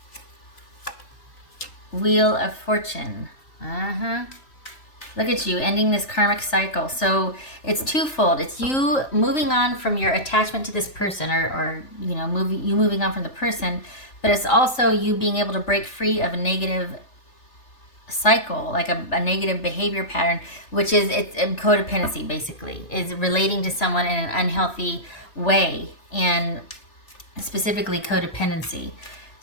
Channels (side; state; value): right; late; 3.4 ms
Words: Wheel of Fortune. Look at you ending this karmic cycle. So it's twofold. It's you moving on from your attachment to this person or you know, moving on from the person, but it's also you being able to break free of a negative cycle, like a negative behavior pattern, which is it's codependency basically. Is relating to someone in an unhealthy way and specifically codependency.